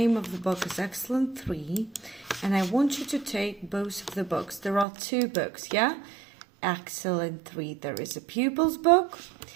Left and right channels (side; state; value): left; drops out; at 4.9 s